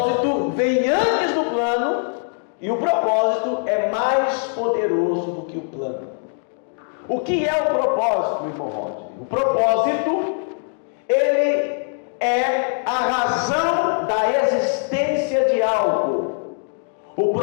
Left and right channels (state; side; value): silent; right; 64 dB below the other